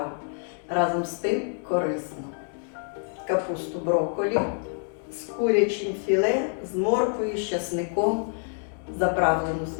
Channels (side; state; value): right; silent; 60 dB below the other